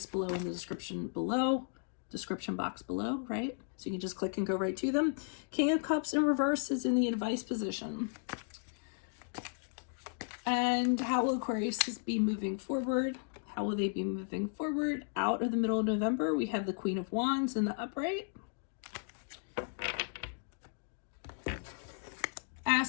below in the description box below, right? So you can just click and go right to them. King of Cups in reverse is in the advice position. And how will Aquarius be moving forward? How will they be moving forward? Out of the middle of November, we have the Queen of Wands in the upright.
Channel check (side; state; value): right; silent; digital silence